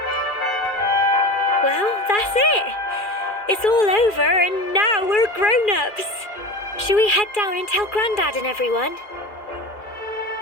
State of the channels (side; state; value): right; late; 2.4 ms